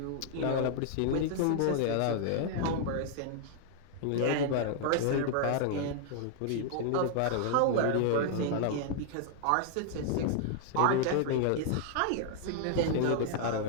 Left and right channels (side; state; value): both; different; correlation 0.00